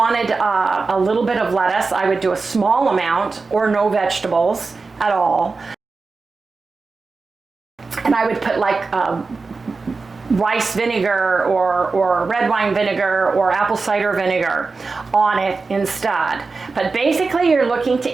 a little bit of lettuce, I would do a small amount or no vegetables at all. And I would put like rice vinegar or red wine vinegar or apple cider vinegar on it instead. But basically you're looking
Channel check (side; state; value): left; quieter; 4.2 dB